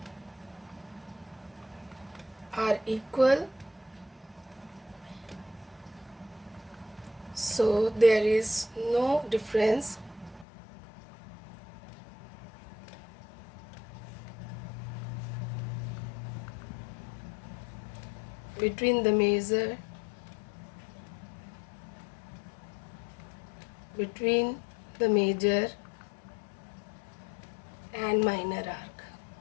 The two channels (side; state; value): right; drops out; at 10.5 s